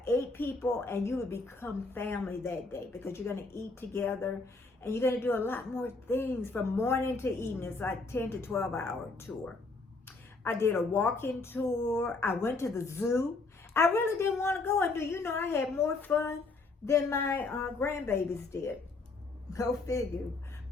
8 people and you will become family that day because you're going to eat together and you're going to do a lot more things from morning to evening. It's like 10 to 12 hour tour. I did a walk-in tour. I went to the zoo. I really didn't want to go. And do you know I had more fun than my grandbabies did. Go figure.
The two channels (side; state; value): right; quieter; 3.7 dB